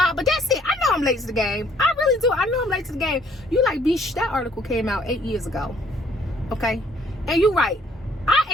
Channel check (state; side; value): normal; both; correlation 0.62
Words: that's it. I know I'm late to the game. I really do. I know I'm late to the game. You like, bitch, that article came out 8 years ago. Okay? And you're right.